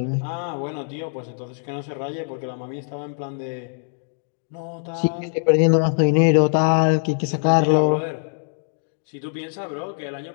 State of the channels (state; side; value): silent; right; digital silence